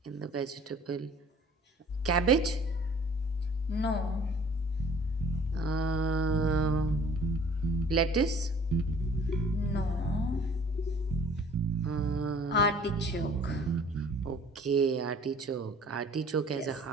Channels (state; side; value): normal; both; correlation 0.53